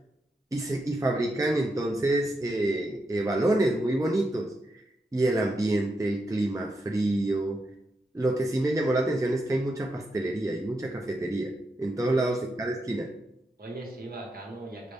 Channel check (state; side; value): normal; both; correlation 0.84